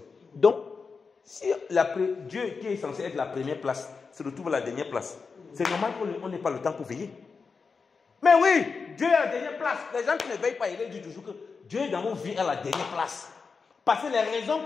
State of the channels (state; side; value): quieter; right; 5.0 dB